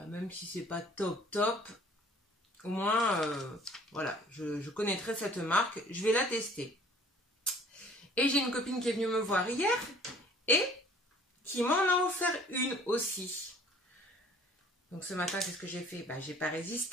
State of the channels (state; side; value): normal; both; correlation 0.54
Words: même si c'est pas top, au moins, voilà, je connaîtrai cette marque, je vais la tester. Et j'ai une copine qui est venue me voir hier et qui m'en a offert une aussi. Donc ce matin, qu'est-ce que j'ai fait? Bah, j'ai pas